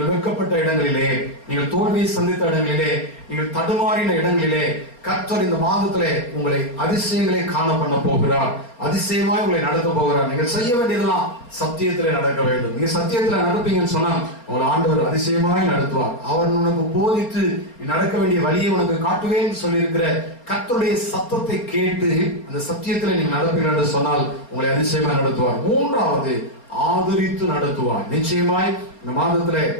வெட்கப்பட்ட இடங்களிலே, நீங்கள் தோல்வியை சந்தித்த இடங்களிலே, நீங்கள் தடுமாறின இடங்களிலே கர்த்தர் இந்த மாதத்திலே உங்களை அதிசயங்களை காண பண்ண போகிறார். அதிசயமாய் உங்களை நடத்த போகிறார். நீங்கள் செய்ய வேண்டியதெல்லாம் சத்தியத்திலே நடக்க வேண்டும். நீங்க சத்தியத்திலே நடப்பீங்கன்னு சொன்னா உங்களை ஆண்டவர் அதிசயமாய் நடத்துவார். அவர் உனக்கு போதித்து நடக்க வேண்டிய வழியை உனக்கு காட்டுவேன் சொல்லியிருக்கிற கர்த்தருடைய சத்தத்தை கேட்டு அந்த சத்தியத்திலே நீங்க நடப்பீர்கள் என்று சொன்னால் உங்களை அதிசயமாய் நடத்துவார். 3வது, ஆதரித்து நடத்துவார். நிச்சயமாய் இந்த மாதத்திலே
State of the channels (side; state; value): right; late; 4.2 ms